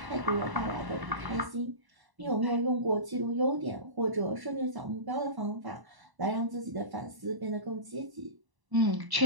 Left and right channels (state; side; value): late; left; 1.0 ms